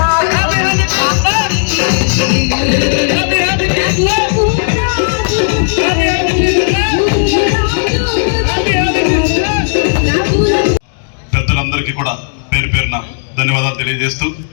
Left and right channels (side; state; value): right; silent; digital silence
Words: పెద్దలందరికీ కూడా పేరు పేరున ధన్యవాదాలు తెలియజేస్తూ,